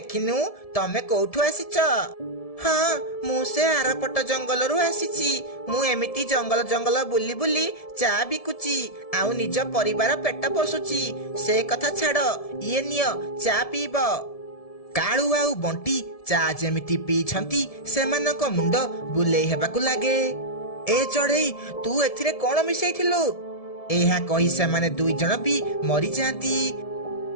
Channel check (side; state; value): right; late; 1.7 ms